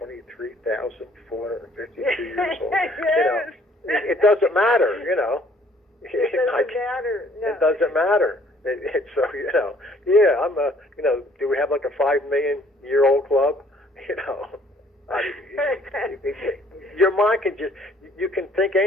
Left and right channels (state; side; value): normal; both; correlation 0.60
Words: years old. Yes. It doesn't matter, It doesn't matter. No. It doesn't matter. So, I'm do we have like a 5 million year old club? Your mind can you can think